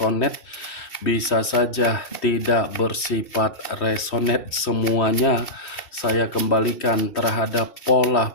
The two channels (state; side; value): late; right; 3.1 ms